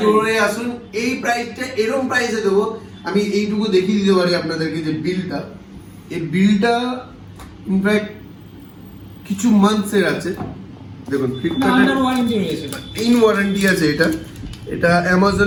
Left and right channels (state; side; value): identical; both; correlation 1.00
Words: আসুন, এই প্রাইসটা এরকম প্রাইসে দেবো। আমি এইটুকু দেখিয়ে দিতে পারি আপনাদেরকে যে বিলটা, এই বিলটা ইনফ্যাক্ট কিছু মান্থসের আছে, দেখুন ফ্লিপকার্টের ইন ওয়ারেন্টি আছে, এটা